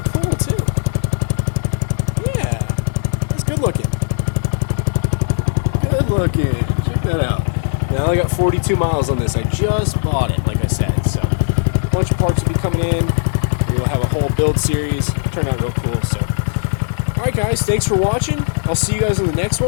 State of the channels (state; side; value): silent; right; 56 dB below the other